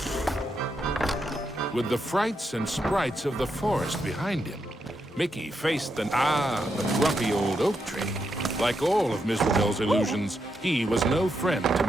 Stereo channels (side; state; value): both; normal; correlation 0.82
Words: With the frights and sprites of the forest behind him, Mickey faced the grumpy old oak tree. Like all of Miserable's illusions, he was no friend to